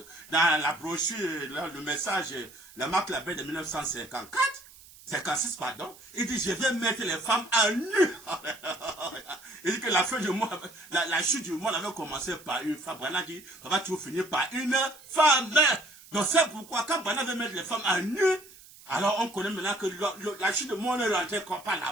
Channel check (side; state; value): right; noise; hiss, 21 dB below the sound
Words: dans la brochure, le message, la marque la paix de 1954, 56, pardon. Il dit, je vais mettre les femmes à nu. Il dit que la fin du mois, la chute du monde avait commencé par une femme. Branham dit, ça va toujours finir par une femme. Donc c'est pourquoi, quand Branham veut mettre les femmes à nu, alors on connaît maintenant que la chute du monde est rentrée comme par la